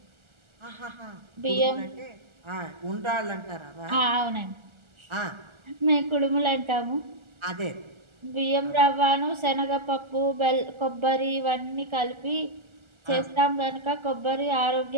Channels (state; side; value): late; left; 1.4 ms